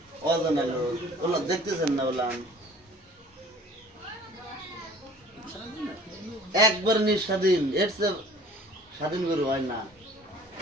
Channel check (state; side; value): normal; both; correlation 0.49